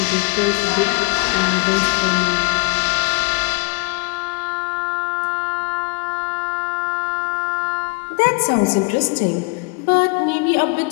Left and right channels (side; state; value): right; quieter; 29.3 dB